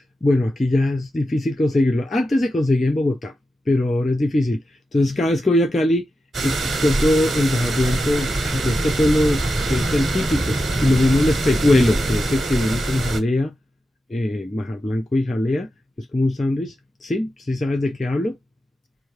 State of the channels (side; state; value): both; normal; correlation 0.90